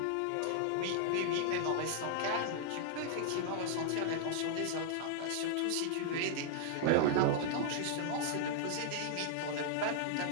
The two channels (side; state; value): both; different; correlation -0.01